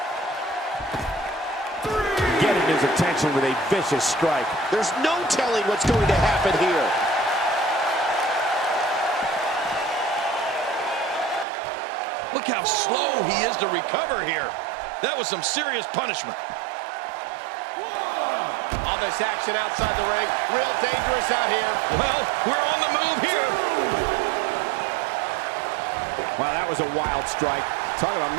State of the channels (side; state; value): left; drops out; at 11.5 s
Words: Getting his attention with a vicious strike. There's no telling what's going to happen here. Look how slow he is to recover here. That was some serious punishment. All this action outside the ring, real dangerous out here. Well, we're on the move here. Wow, that was a wild strike. Talk about